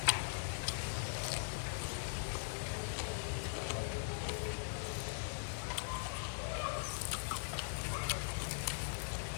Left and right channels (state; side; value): silent; right; 50 dB below the other